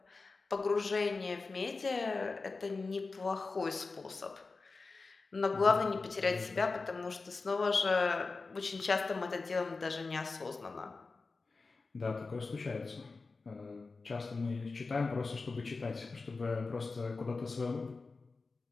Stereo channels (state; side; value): quieter; right; 4.0 dB